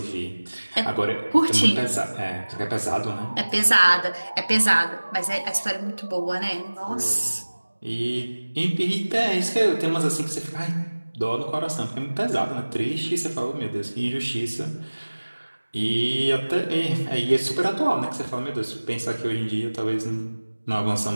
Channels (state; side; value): inverted; both; correlation -1.00